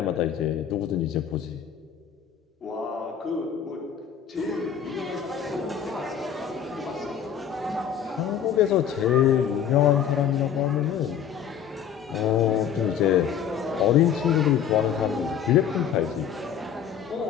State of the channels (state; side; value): quieter; right; 8.5 dB